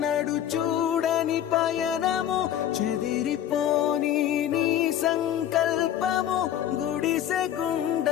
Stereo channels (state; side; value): quieter; right; 10.9 dB